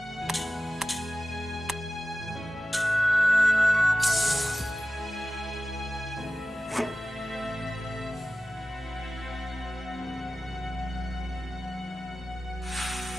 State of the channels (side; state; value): both; normal; correlation 0.95